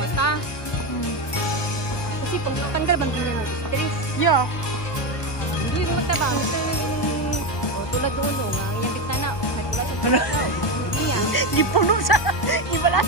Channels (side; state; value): right; late; 1.2 ms